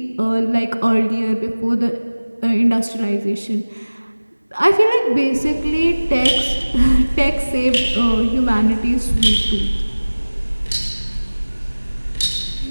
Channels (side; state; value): both; inverted; correlation -1.00